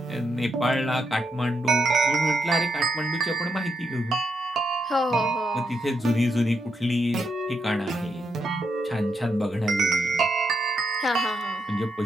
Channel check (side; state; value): both; normal; correlation 0.80